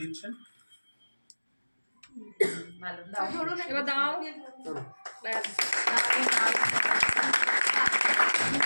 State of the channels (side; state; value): both; inverted; correlation -1.00